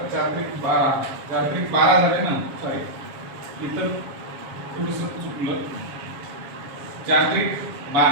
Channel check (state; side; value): late; left; 7.2 ms